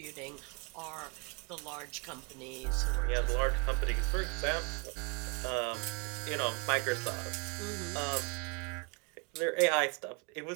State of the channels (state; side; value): quieter; left; 31.6 dB